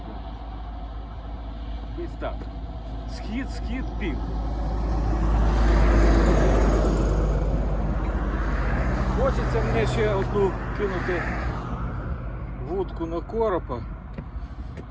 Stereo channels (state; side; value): identical; both; correlation 1.00